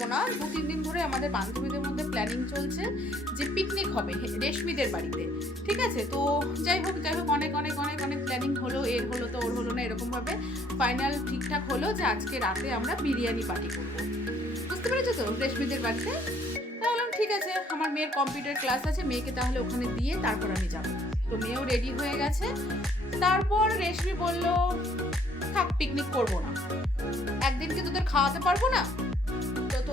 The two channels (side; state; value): both; normal; correlation 0.63